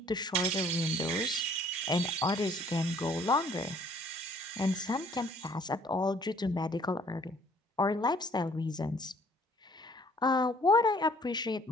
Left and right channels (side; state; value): both; normal; correlation 0.58